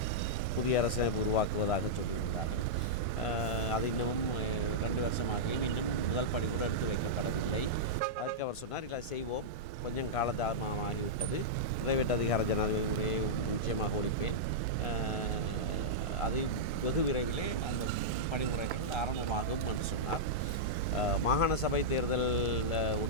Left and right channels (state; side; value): normal; both; correlation -0.09